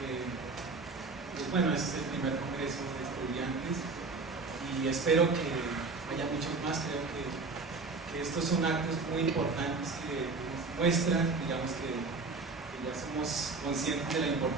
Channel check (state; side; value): quieter; left; 4.0 dB